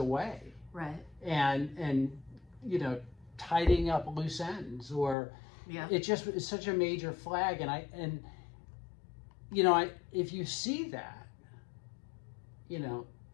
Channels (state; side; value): drops out; right; at 5.2 s